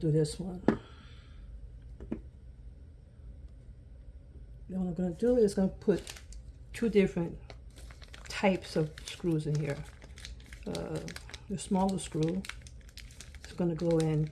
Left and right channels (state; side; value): identical; both; correlation 1.00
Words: do this one. Then what I'm gonna do is gonna put two different types of screws in here. The smaller screw is gonna go in